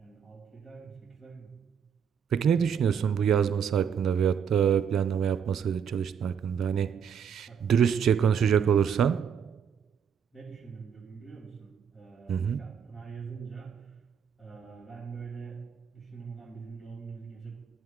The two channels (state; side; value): quieter; left; 7.5 dB